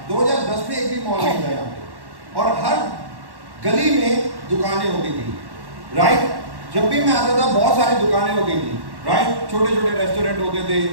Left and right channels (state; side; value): late; left; 1.1 ms